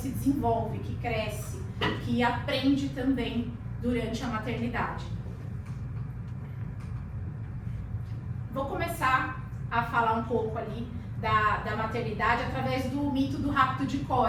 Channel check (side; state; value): both; identical; correlation 1.00